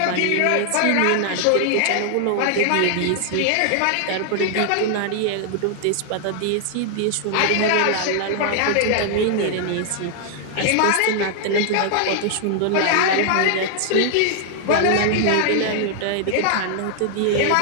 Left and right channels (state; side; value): different; both; correlation 0.00